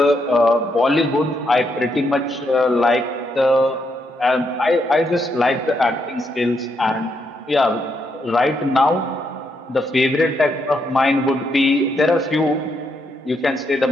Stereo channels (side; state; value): both; normal; correlation 0.78